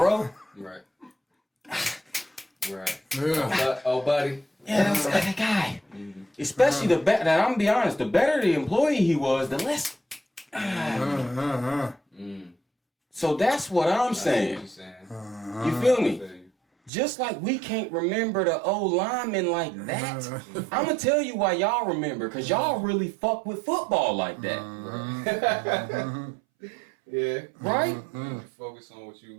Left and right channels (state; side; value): drops out; left; at 16.9 s